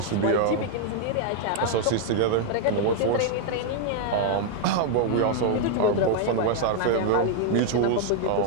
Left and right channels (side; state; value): both; different; correlation -0.01